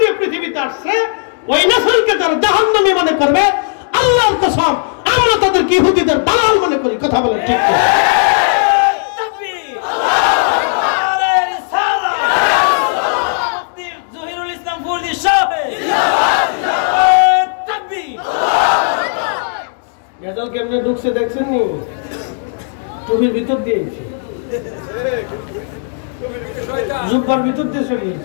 দিয়ে পৃথিবীতে আসছে ওই নসলকে যারা জাহান্নামী মনে করবে, আল্লাহর কসম আমরা তাদেরকে ইহুদিদের দালাল মনে করি। কথা বলেন ঠিক কি? তাকবীর, আল্লাহু আকবার, রিসালাত, মুফতি জহিরুল ইসলাম ফরিদ সাহেব, জিন্দাবাদ, জিন্দাবাদ, তাকবীর। গেজাল কেমনে ঢুকছে দেখছেন নি? টুপির ভিতর দিয়েছি, জুব্বার ভিতর দিয়ে চলে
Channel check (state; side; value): silent; right; 64 dB below the other